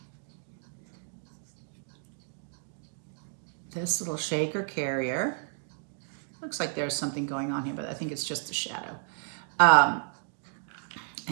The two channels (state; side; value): silent; left; digital silence